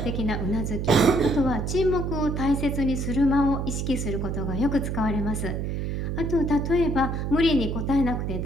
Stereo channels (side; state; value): right; noise; hum, 2 dB below the sound